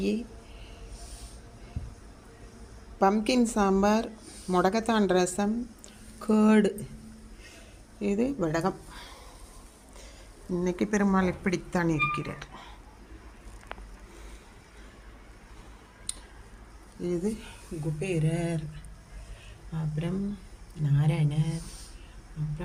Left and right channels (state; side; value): identical; both; correlation 1.00